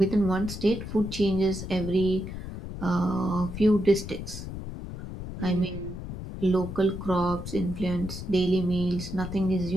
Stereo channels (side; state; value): left; noise; rumble, 8 dB below the sound